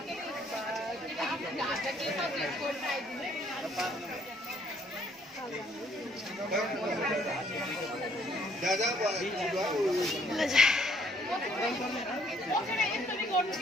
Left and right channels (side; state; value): both; normal; correlation 0.65